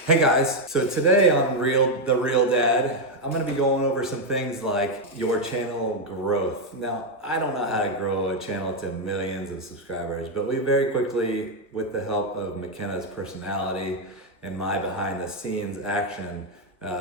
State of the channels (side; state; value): both; normal; correlation 0.02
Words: Hey guys, so today on The Real Dad, I'm gonna be going over some things like your channel growth. Now, I don't know how to grow a channel to millions of subscribers, but we very quickly, with the help of McKenna's personality and my behind the scenes action,